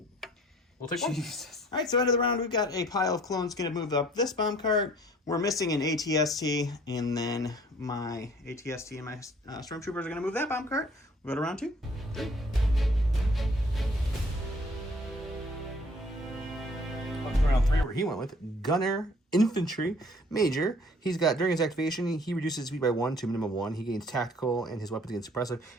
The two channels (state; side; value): normal; both; correlation 0.56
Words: We'll take 1. Jesus. All right, so end of the round, we've got a pile of clones going to move up this bomb cart. We're missing an ATST, and then my ATST and my Stormtroopers are going to move that bomb cart. We'll go to round 2. 3. Round 3 where he went with Gunner infantry major. He's got, during his activation, he reduces speed by 1 to minimum 1. He gains tactical, and his weapons gain suppressive.